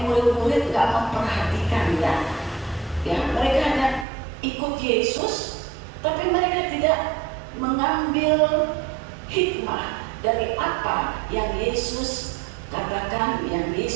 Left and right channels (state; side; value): drops out; left; at 4.0 s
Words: murid-murid gak memperhatikan, ya, mereka hanya ikut Yesus, tapi mereka tidak mengambil hikmah dari apa yang Yesus katakan, yang